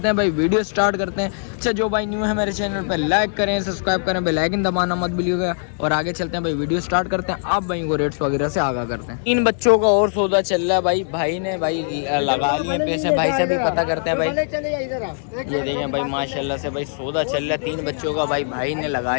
हैं भाई, वीडियो स्टार्ट करते हैं। अच्छा जो भाई न्यू है मेरे चैनल पर लाइक करें, सब्सक्राइब करें, बेल आइकन दबाना मत भूलिएगा। और आगे चलते हैं भाई, वीडियो स्टार्ट करते हैं, आप भाई को रेट्स वगैरह से आगाह करते हैं। इन बच्चों का और सौदा चल रहा है भाई। भाई ने भाई लगा लिए पैसे, भाई से भी पता करते हैं भाई। ये देखें भाई माशाल्लाह से भाई सौदा चल रहा है 3 बच्चों का भाई। भाई ने लगा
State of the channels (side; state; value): right; silent; 65 dB below the other